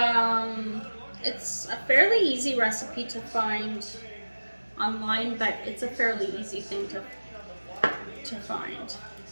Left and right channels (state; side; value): inverted; both; correlation -1.00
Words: it's a fairly easy recipe to find online, but it's a fairly easy thing to find.